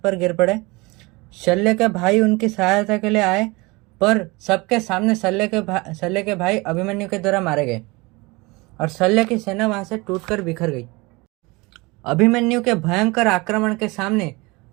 पर गिर पड़े। शल्य के भाई उनकी सहायता के लिए आए पर सबके सामने शल्य के भाई अभिमन्यु के द्वारा मारे गए और शल्य की सेना वहां से टूटकर बिखर गई। अभिमन्यु के भयंकर आक्रमण के सामने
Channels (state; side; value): quieter; left; 24.8 dB